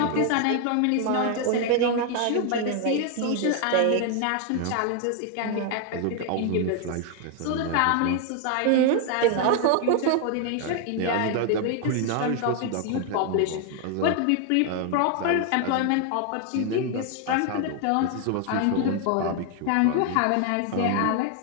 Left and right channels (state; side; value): different; both; correlation 0.00